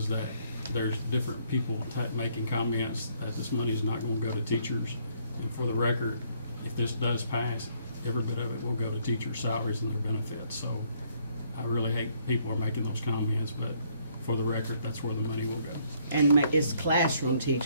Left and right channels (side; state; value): both; inverted; correlation -0.68